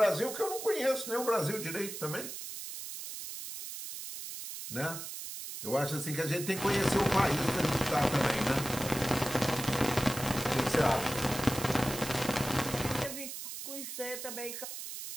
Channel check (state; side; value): noise; right; hiss, 8 dB below the sound